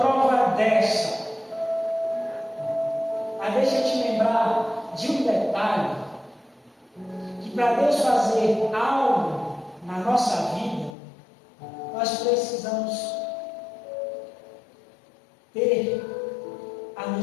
dessa? Mas deixa eu te lembrar de um detalhe, que para Deus fazer algo na nossa vida, nós precisamos ter a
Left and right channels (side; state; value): right; drops out; at 11.0 s